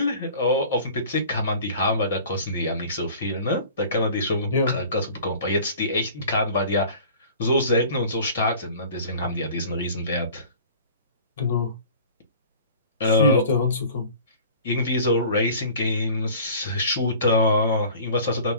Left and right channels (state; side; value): inverted; both; correlation -0.45